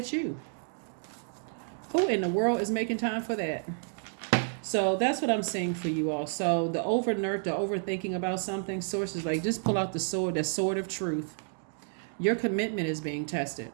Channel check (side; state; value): left; silent; 57 dB below the other